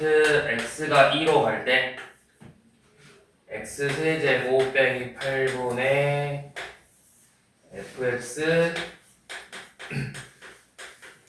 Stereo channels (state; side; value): identical; both; correlation 1.00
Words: x가 2로 갈 때 x 세제곱 빼기 8분의 fx